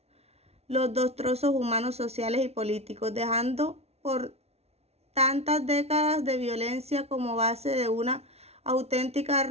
los destrozos humanos, sociales y políticos, dejando por tantas décadas de violencia como base de una auténtica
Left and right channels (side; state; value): left; late; 0.31 ms